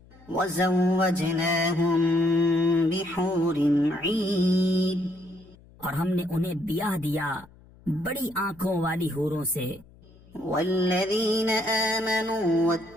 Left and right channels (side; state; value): left; noise; hum, 25 dB below the sound